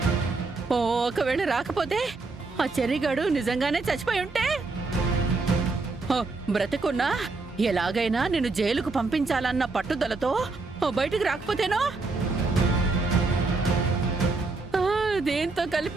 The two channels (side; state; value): left; quieter; 3.7 dB